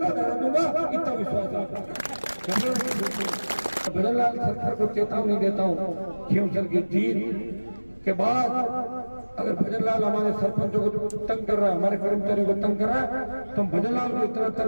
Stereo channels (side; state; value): both; inverted; correlation -1.00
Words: डरा दूंगा, इतना विश्वास आपको। भजनलाल सरकार को चेतावनी देता हूँ, खींवसर की जीत के बाद अगर भजनलाल हमारे सरपंचों को तंग कर रहा है, हमारे कर्मचारियों को तंग कर रहा है, तो हम भजनलाल को इतना